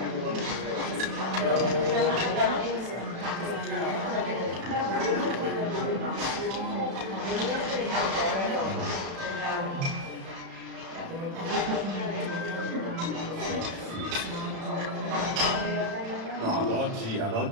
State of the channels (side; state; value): left; late; 36 ms